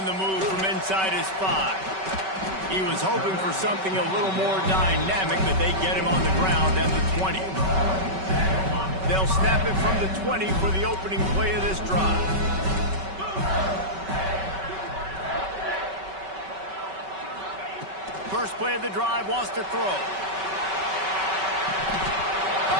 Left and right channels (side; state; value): left; late; 5.3 ms